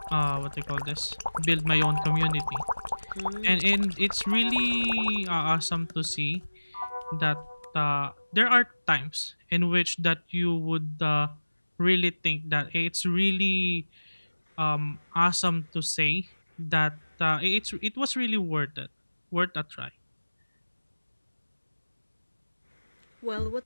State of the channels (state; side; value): inverted; both; correlation -1.00